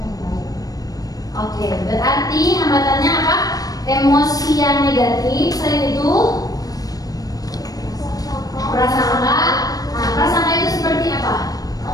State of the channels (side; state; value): right; late; 0.18 ms